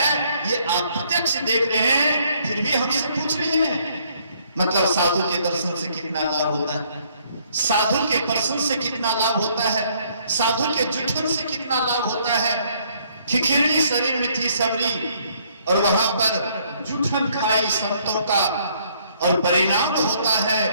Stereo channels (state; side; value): inverted; both; correlation -0.66